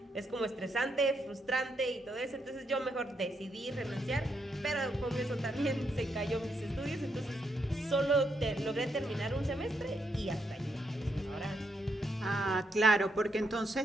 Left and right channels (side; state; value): both; normal; correlation 0.79